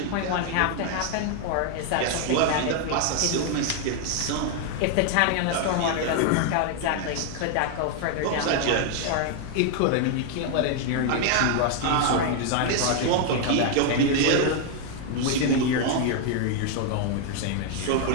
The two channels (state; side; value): different; both; correlation 0.00